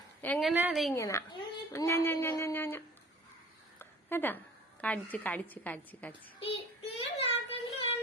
എങ്ങനെ അത് ഇങ്ങനെ കേട്ടാ? കടിച്ച്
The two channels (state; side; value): normal; both; correlation 0.46